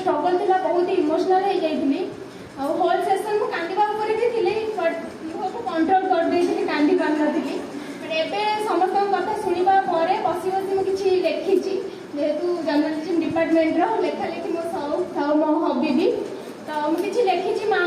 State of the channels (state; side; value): identical; both; correlation 1.00